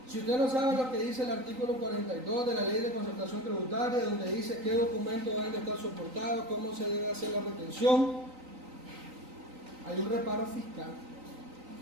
Si usted no sabe lo que dice el artículo 42 de la Ley de Concertación Tributaria, donde dice qué documentos deben de estar soportados, cómo se debe hacer la retención, hay un reparo fiscal.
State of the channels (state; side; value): late; left; 3.9 ms